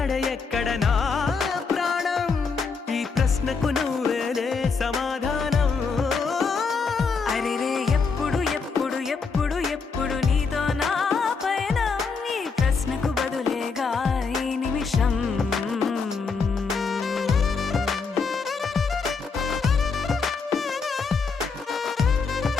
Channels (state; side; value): quieter; right; 4.9 dB